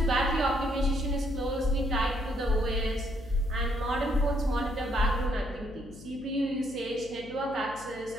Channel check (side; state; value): left; noise; hum, 18 dB below the sound